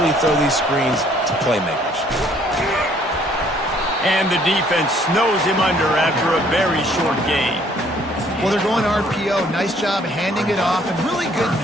throw these screens to playmakers. And the defense snows him under after a very short gain. Well, they're going RPO. Nice job handing it off, and really good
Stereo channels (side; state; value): both; normal; correlation 0.62